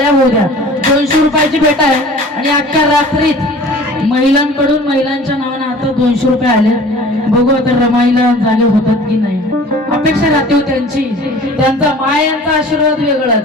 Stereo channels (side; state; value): both; normal; correlation 0.45